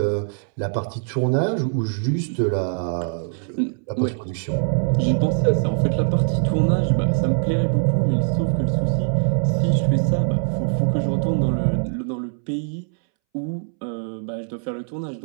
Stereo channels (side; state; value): left; silent; 64 dB below the other